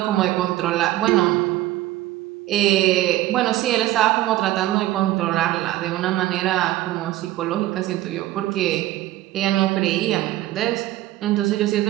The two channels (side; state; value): left; quieter; 15.6 dB